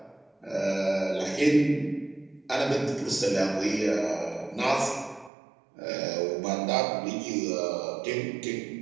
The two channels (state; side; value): drops out; left; at 5.3 s